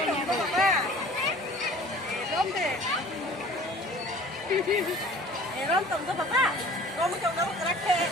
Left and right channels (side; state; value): both; normal; correlation 0.47